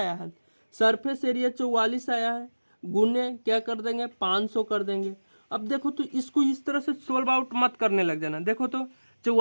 है, सरफेस एरिया 44 आया है, गुने क्या कर देंगे 500 कर देंगे। अब देखो तो इसको इस तरह से सोल्व आउट मत करने लग जाना। देखो तो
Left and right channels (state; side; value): inverted; both; correlation -1.00